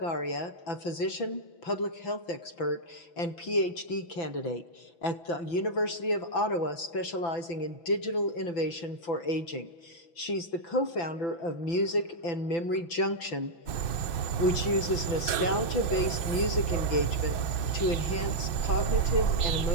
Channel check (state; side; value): late; right; 6.1 ms